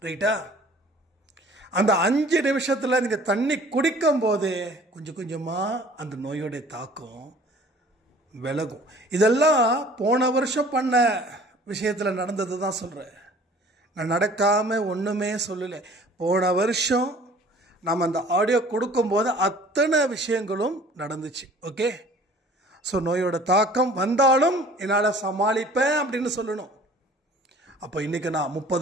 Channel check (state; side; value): normal; both; correlation 0.50